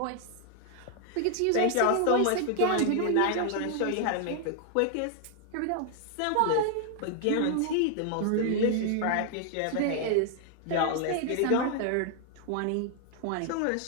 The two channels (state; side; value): different; both; correlation 0.00